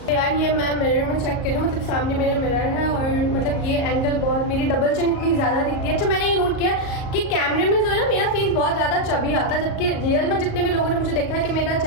यार ये मैं मिरर में चेक करूँ, मतलब सामने मेरे मिरर है और मतलब ये एंगल बहुत, मेरी डबल चिन इतनी ज़्यादा दिखती है। अच्छा मैंने ये नोट किया कि कैमरे में जो है ना मेरा फेस बहुत ज़्यादा चबी आता है, जबकि रियल में जितने भी लोगों ने मुझे देखा है कि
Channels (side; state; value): right; late; 38 ms